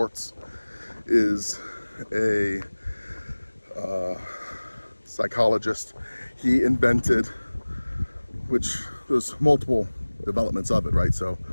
is a psychologist. He invented, which there's multiple developments of it, right? So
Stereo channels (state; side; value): inverted; both; correlation -1.00